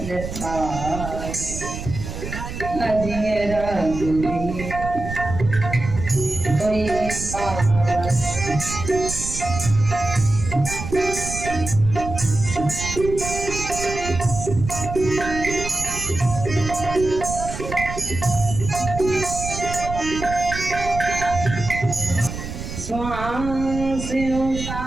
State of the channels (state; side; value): noise; right; rumble, 8 dB below the sound